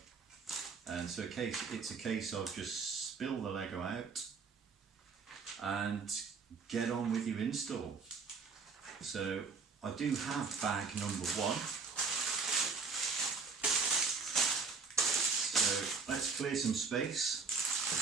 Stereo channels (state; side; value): quieter; left; 4.8 dB